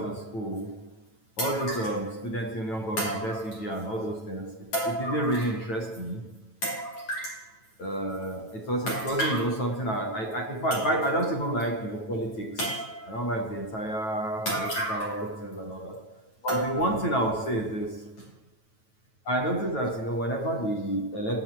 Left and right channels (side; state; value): right; late; 9.1 ms